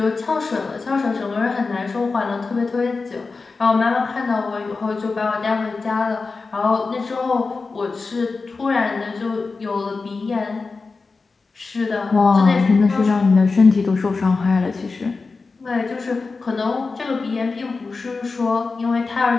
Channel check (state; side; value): quieter; right; 4.2 dB